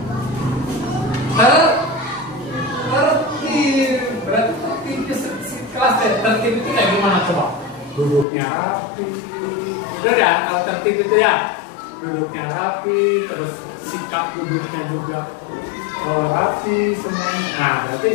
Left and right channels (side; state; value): right; drops out; at 8.2 s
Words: Tertib. Berarti tertibnya kelas tertib itu kayak gimana coba? Duduknya rapi. Bener ya, kalau tertib itu ya duduknya rapi, terus sikap duduknya juga rapi semuanya. Nah, berarti